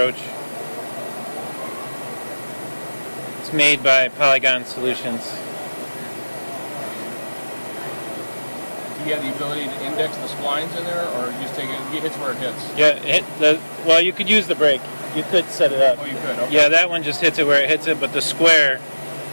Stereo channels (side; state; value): both; inverted; correlation -1.00